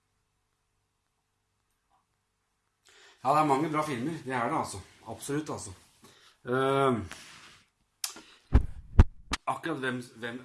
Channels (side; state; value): both; identical; correlation 1.00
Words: Ja, det er mange bra filmer. Det er det, altså. Absolutt, altså. Akkurat